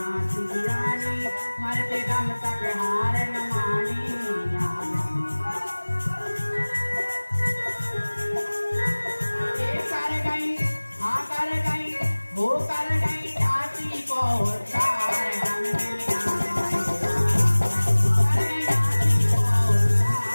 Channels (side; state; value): both; inverted; correlation -1.00